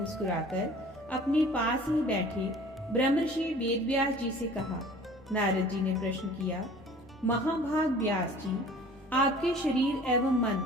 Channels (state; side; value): normal; both; correlation 0.47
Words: अपने पास ही बैठे ब्रह्मर्षि वेदव्यास जी से कहा। नारद जी ने प्रश्न किया, महाभाग व्यास जी, आपके शरीर एवं मन